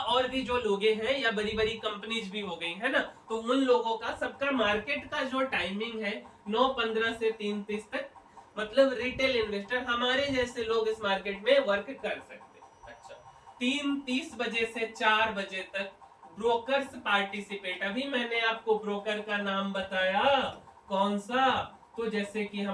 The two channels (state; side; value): identical; both; correlation 1.00